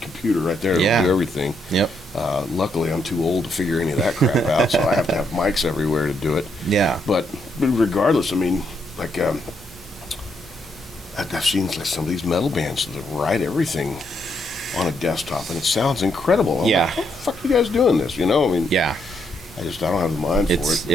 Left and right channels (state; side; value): normal; both; correlation 0.76